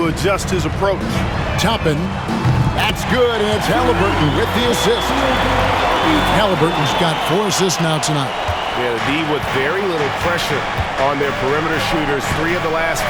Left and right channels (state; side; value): identical; both; correlation 1.00